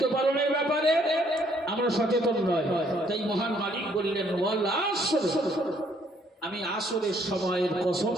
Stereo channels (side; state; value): both; normal; correlation 0.66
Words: পালনের ব্যাপারে আমরা সচেতন নয়। তাই মহান মালিক বললেন, ওয়াল আসর, আমি আসরের সময়ের কসম